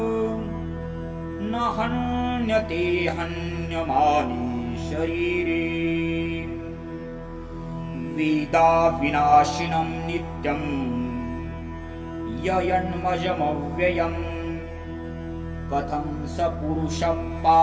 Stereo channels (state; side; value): identical; both; correlation 1.00